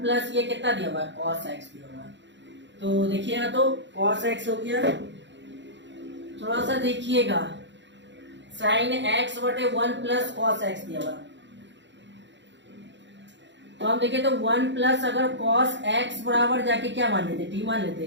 प्लस ये कितना दिया हुआ है, cos x दिया हुआ है। तो देखिएगा तो cos x हो गया, थोड़ा सा देखिएगा, sin x बटे 1 प्लस cos x दिया हुआ है। तो हम देखें तो 1 प्लस अगर cos x बराबर जाके क्या मान लेते, t मान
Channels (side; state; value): left; late; 0.53 ms